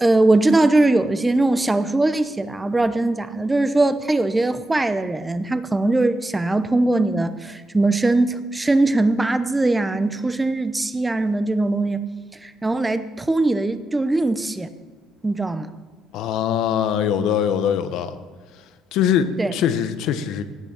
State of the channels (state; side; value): normal; both; correlation 0.84